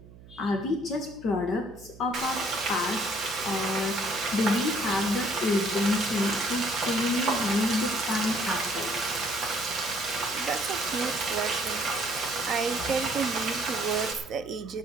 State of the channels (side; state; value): right; noise; hum, 20 dB below the sound